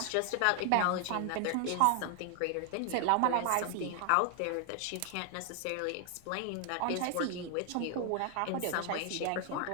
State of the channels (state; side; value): different; both; correlation 0.00